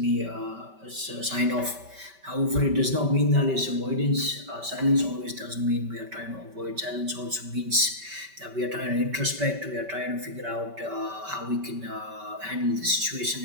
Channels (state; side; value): late; left; 5.2 ms